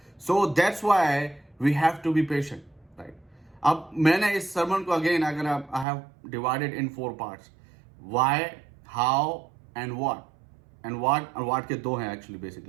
So that's why we have to be patient, right? अब मैंने इस सर्मन को अगेन अगर I have divided in 4 parts, why, how and what. And what के 2 हैं एक्चुअली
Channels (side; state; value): left; drops out; at 5.9 s